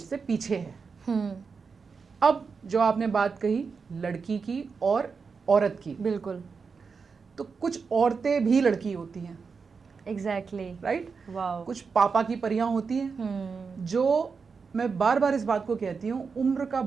से पीछे है। अब जो आपने बात कही लड़की की और औरत की, बिल्कुल, तो कुछ औरतें भी लड़की होती हैं। एग्जैक्टली। राइट? वाओ। कुछ पापा की परियां होती हैं, जो मैं बार बार इस बात को कहती हूँ, उम्र का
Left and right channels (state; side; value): quieter; left; 5.2 dB